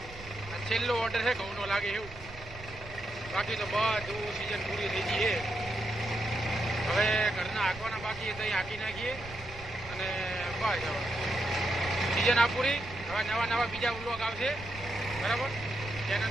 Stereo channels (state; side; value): noise; right; rumble, 16 dB below the sound